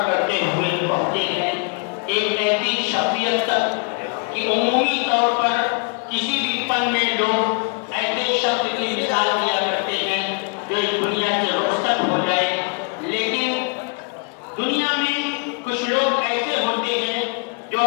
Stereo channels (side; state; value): right; quieter; 35.4 dB